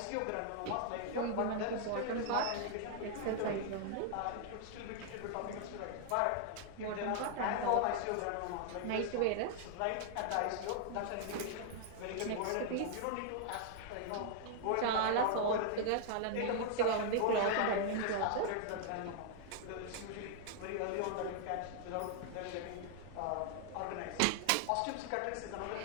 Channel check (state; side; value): different; both; correlation 0.00